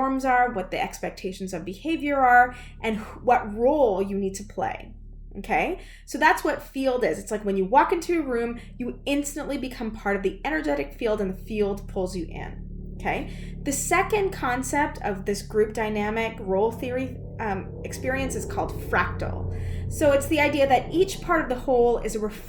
are, what the expectations of behavior are, and what role you need to play. Okay? So, that's what field is. It's like when you walk into a room, you instantly become part of the energetic field, and the field pulls you in. Okay. The second concept of this group dynamic role theory experience is called fractal. So it's the idea that each part of the whole is a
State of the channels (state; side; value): identical; both; correlation 1.00